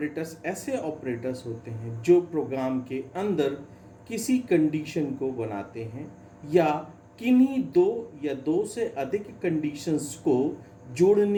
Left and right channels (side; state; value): both; identical; correlation 1.00